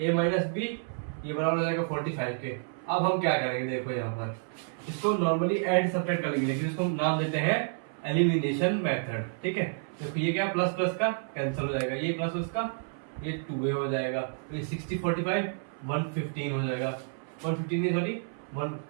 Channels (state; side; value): silent; left; 58 dB below the other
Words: a माइनस बी ये बराबर हो जाएगा 45 के। अब हम क्या करेंगे, देखो यहाँ पर इसको नॉर्मली ऐड सब्ट्रैक्ट कर लेंगे, लेकिन इसको नाम देते हैं एलिमिनेशन मेथड। ठीक है, देखो ये क्या, प्लस प्लस का कैंसिल हो जाएगा, ये प्लस प्लस का ये 2a हो जाएगा, ये 60 45 115 हो जाएगा। 115 नहीं सॉरी 1,